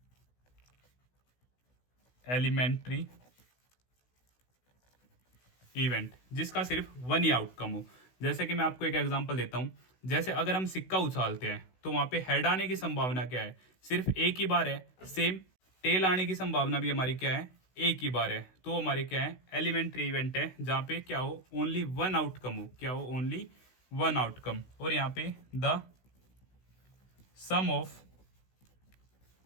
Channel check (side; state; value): right; late; 16 ms